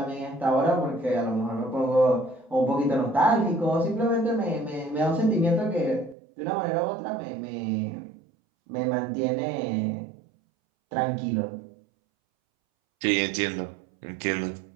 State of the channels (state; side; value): drops out; left; at 6.2 s